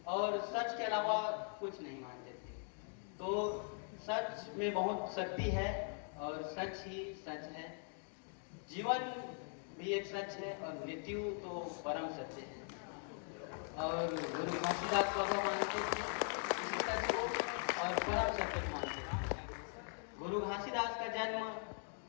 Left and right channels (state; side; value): silent; right; 50 dB below the other